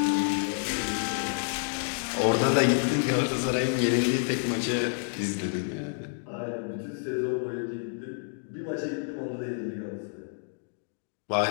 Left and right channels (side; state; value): right; silent; digital silence